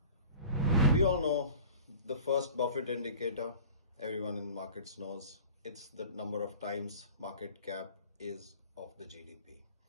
We all know the first Buffett indicator, everyone in markets knows, it's the number of times market cap is of the GDP.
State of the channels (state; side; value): inverted; both; correlation -0.41